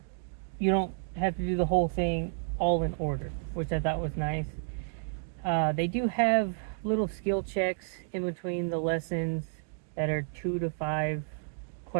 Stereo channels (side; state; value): left; silent; digital silence